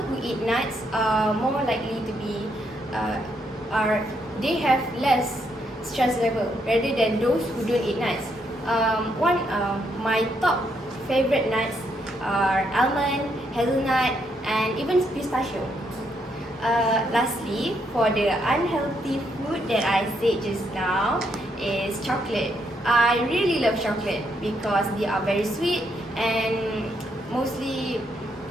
eat nuts are more likely to be they have less stress level rather than those who don't eat nuts. My top favorite nuts are almond, hazelnut, and even pistachio. Lastly, for the unhealthy food that I said just now is chocolate. I really love chocolate because they are very sweet, and most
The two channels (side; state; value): both; normal; correlation 0.76